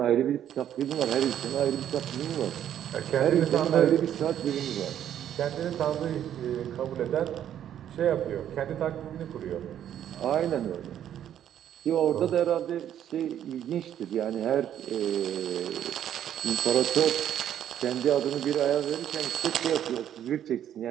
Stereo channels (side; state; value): left; quieter; 10.4 dB